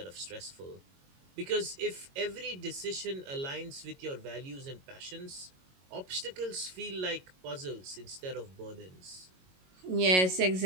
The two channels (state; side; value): late; left; 22 ms